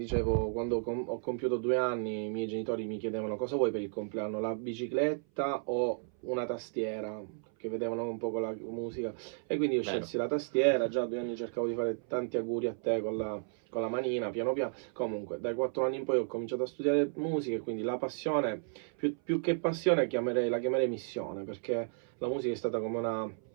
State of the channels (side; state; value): left; silent; 56 dB below the other